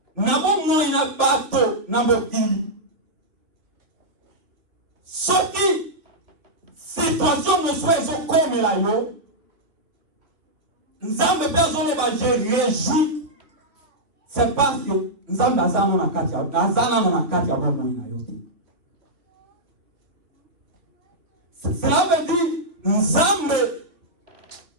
nabo moi na bato na mokili. Soki situation mo soit zo comme la yo, nzambe personne ba je réjouis. C'est parce que nzambe azana na kati ya bomo na yo. Cela veut dire nzambe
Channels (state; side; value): late; left; 2.8 ms